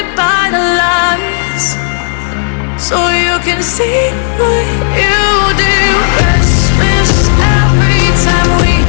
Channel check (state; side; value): silent; right; digital silence